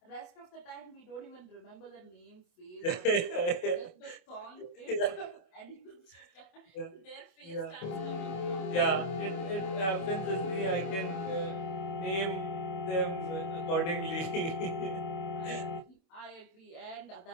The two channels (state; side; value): late; right; 26 ms